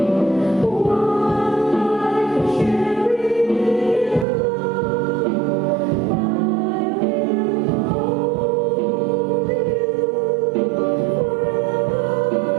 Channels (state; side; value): drops out; left; at 4.2 s